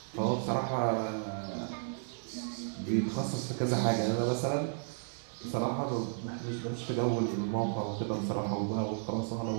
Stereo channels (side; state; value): left; silent; digital silence